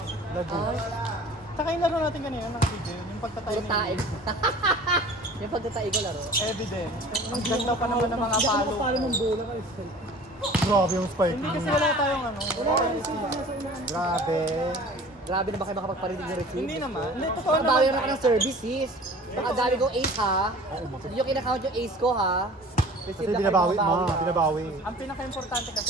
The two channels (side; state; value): both; normal; correlation 0.44